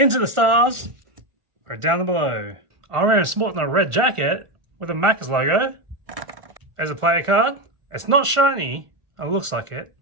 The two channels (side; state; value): left; late; 1.4 ms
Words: the stars. Or down below. RM is sporting a red jacket with a Maccas logo. There's a player card. It's not shiny. It looks like it.